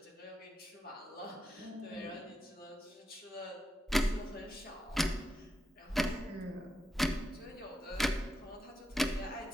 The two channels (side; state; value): both; normal; correlation 0.86